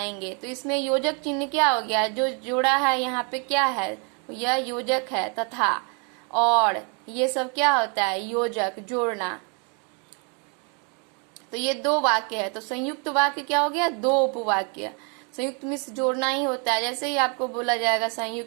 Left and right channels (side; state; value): left; quieter; 36.4 dB